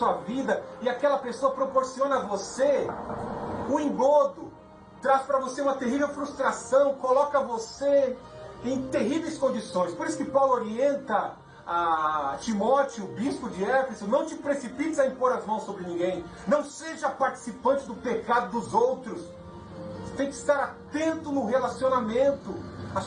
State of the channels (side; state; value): both; identical; correlation 1.00